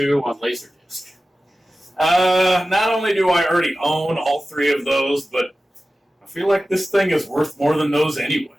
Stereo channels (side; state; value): both; normal; correlation 0.95